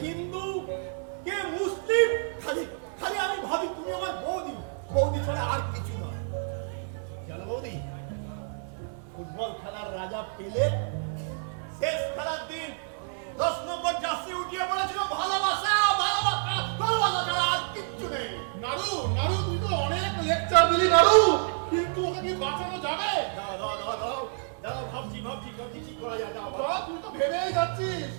হিন্দু, কে মুসলিম, খালি খালি আমি ভাবি তুমি আমার বৌদি, বৌদি ছাড়া আর কিছু নয়। জানো বৌদি, ফুটবল খেলার রাজা পেলে শেষ খেলার দিন 10 নম্বর জার্সি উঠিয়ে বলেছিল ভালোবাসা, ভালোবাসা, ভালোবাসা ছাড়া আর কিচ্ছু নেই। নাড়ু নাড়ু তুই তো অনেক লেকচার দিলি নাড়ু, কিন্তু ওকে কি বাঁচানো যাবে? দাও দাও দাও দাও দাও, ভাবছি ভাবছি ভাবছি কি করা যায়। দাও বাবা তুই তো ভেবেই যাচ্ছিস,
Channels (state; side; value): silent; left; 59 dB below the other